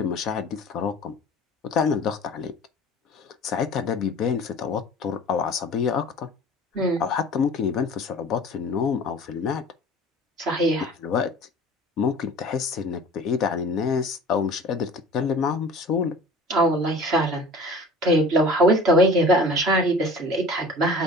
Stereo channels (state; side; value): normal; both; correlation 0.43